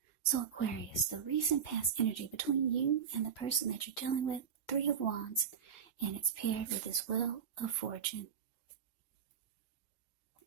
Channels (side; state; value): left; quieter; 7.4 dB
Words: So Aquarius, the recent past energy between you and the person that you're dealing with, Three of Wands, and it's paired with this Wheel of Fortune.